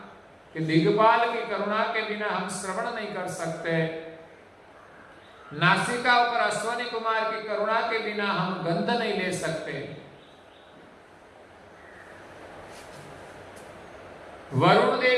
के दिग्पाल की करुणा के बिना हम श्रवण नहीं कर सकते, नासिका और अश्वनी कुमार की करुणा के बिना हम गंध नहीं ले सकते, वरुण देव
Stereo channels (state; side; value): identical; both; correlation 1.00